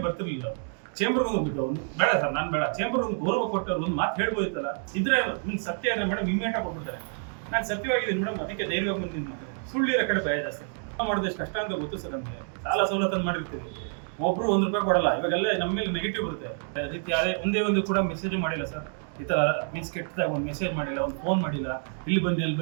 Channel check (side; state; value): left; silent; 56 dB below the other